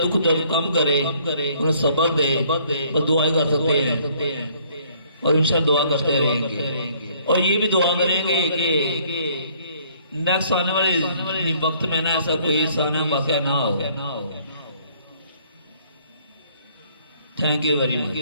دکھ درد کم کرے انہیں صبر دے اور دعائیں کر سکتے ہیں اور انشاءاللہ دعا کرتے رہیں گے اور یہ بھی دعا کریں گے کہ نیکسٹ آنے والے وقت میں نا ایسا کوئی سانیہ واقعہ نہ ہوگا. Thank you very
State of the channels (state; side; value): inverted; both; correlation -0.61